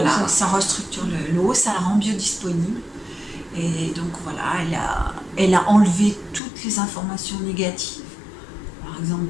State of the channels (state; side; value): drops out; right; at 6.4 s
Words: ça restructure l'eau, ça la rend biodisponible. Et donc voilà, elle a enlevé toutes les informations négatives. Par exemple,